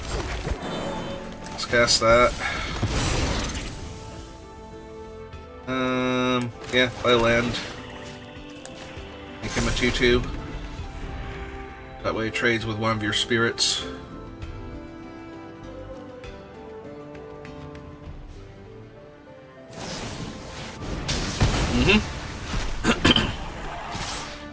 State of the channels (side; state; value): both; identical; correlation 1.00